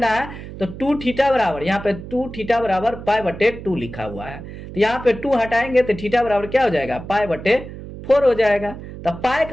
है। तो 2θ बराबर यहाँ पे 2θ बराबर π/2 लिखा हुआ है, तो यहाँ पे 2 हटाएंगे तो थीटा बराबर क्या हो जाएगा π/4 हो जाएगा। तो पाई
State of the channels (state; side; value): noise; right; hum, 12 dB below the sound